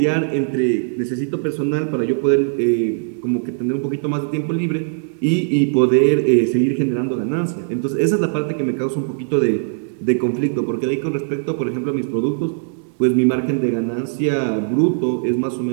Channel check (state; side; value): silent; left; digital silence